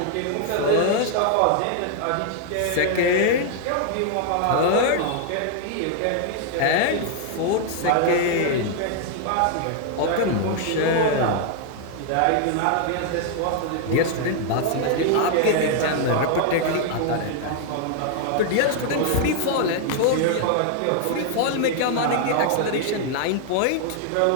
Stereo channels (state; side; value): different; both; correlation 0.00